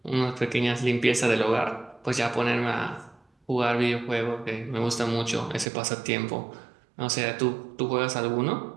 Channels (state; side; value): drops out; left; at 5.7 s